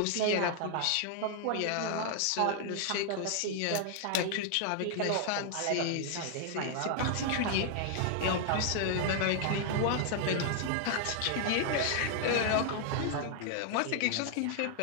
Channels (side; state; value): both; different; correlation 0.00